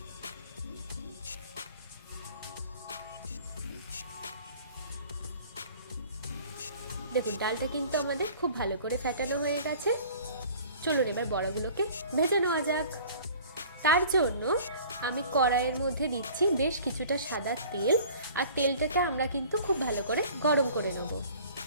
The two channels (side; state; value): both; inverted; correlation -0.48